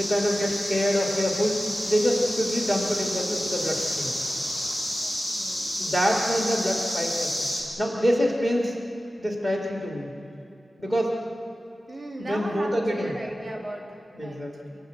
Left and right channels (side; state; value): both; normal; correlation 0.95